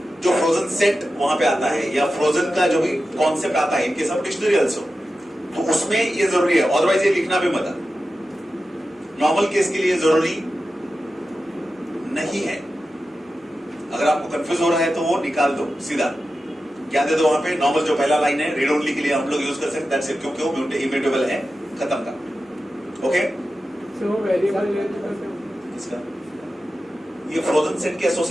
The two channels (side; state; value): both; normal; correlation 0.92